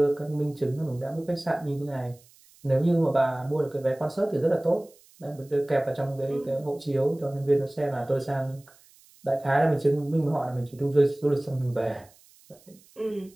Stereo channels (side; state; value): right; noise; hiss, 28 dB below the sound